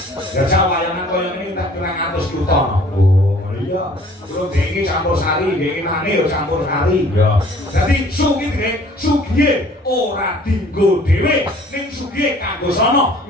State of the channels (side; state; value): both; normal; correlation 0.53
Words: Ya wayangan kaya ngene tak 200 juta. Oh, ngono iya. Kulo dhewe campur sari, dhewe nane ya campur sari. Ya. Dadi sugihe ora dinggo dhewe, ning sugihe kanggo sono